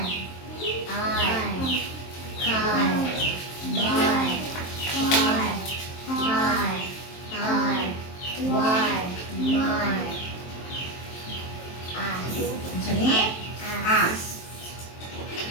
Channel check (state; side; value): late; right; 23 ms